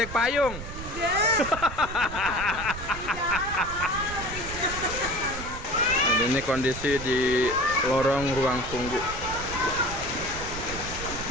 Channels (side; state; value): right; noise; rumble, 10 dB below the sound